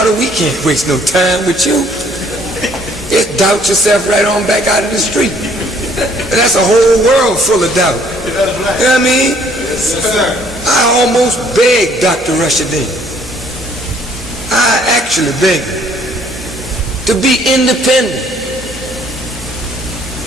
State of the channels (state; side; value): normal; both; correlation 0.62